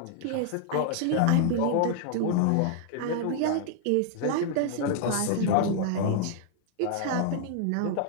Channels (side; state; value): both; different; correlation 0.00